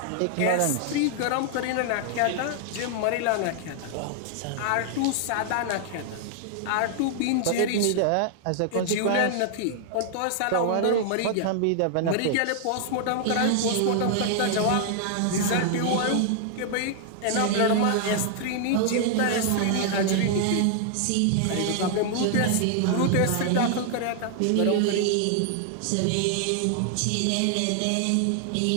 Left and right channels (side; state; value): both; different; correlation -0.01